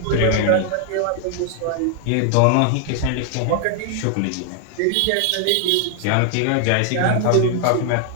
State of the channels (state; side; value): different; both; correlation 0.00